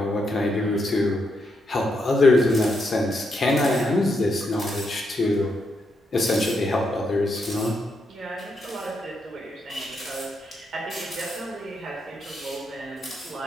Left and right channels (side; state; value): both; normal; correlation 0.81